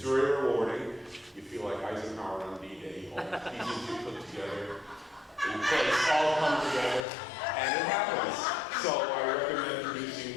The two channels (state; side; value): drops out; right; at 7.0 s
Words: very rewarding. You feel like Eisenhower on D-Day. All the pieces you put together in place all come together, and it happens. So I recommend